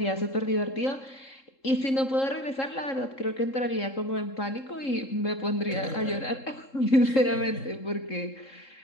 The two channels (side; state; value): right; late; 3.7 ms